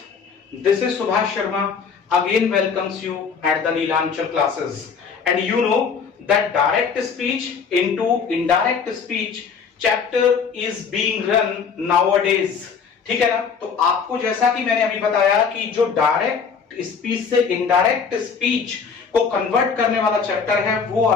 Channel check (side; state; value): right; quieter; 5.9 dB